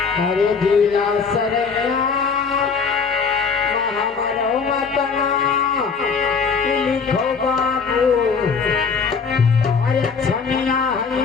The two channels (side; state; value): right; quieter; 5.5 dB